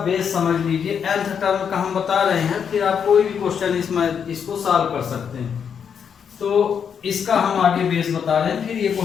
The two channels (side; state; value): right; quieter; 7.3 dB